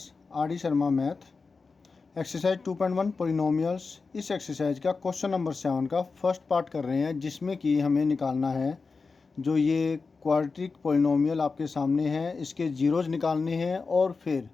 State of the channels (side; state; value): right; quieter; 4.4 dB